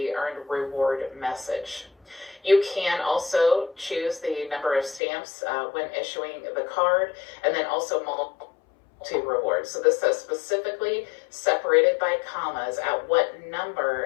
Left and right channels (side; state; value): right; drops out; at 5.0 s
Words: earned reward message. You can also choose the number of stamps when issuing the card, and then also multi-rewards. So this says specifically separated by commas at what number